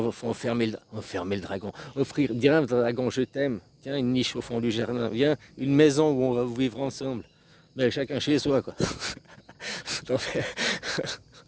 enfermer le dragon. Dire un dragon, je t'aime. Tiens, une niche au fond du jardin. Viens, une maison où on va vivre ensemble. Mais chacun chez soi, quoi. Non, mais-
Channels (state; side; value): identical; both; correlation 1.00